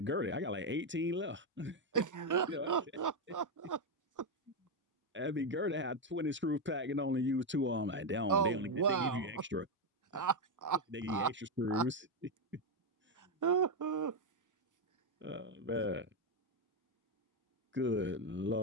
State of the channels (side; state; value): both; normal; correlation 0.05